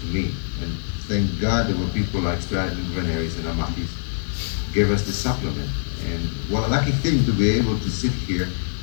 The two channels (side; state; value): right; silent; digital silence